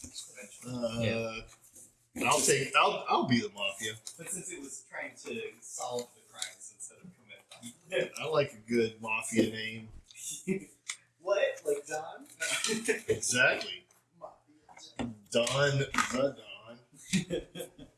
I'll be the mafia. But since it was trying to solve the crimes instead of commit them. I like a good mafia name. What? Like Don? Exactly. Don the Don.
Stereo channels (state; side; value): identical; both; correlation 1.00